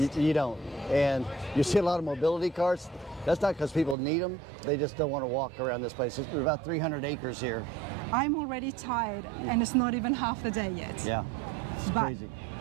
You don't. And you see a lot of mobility cars. That's not because people need them. They just don't want to walk around this place. It's about 300 acres here. I'm already tired, and it's not even half the day yet. Yeah. It's crazy.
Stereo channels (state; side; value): drops out; left; at 4.0 s